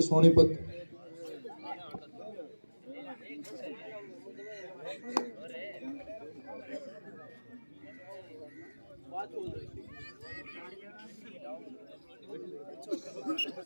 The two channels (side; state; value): both; inverted; correlation -1.00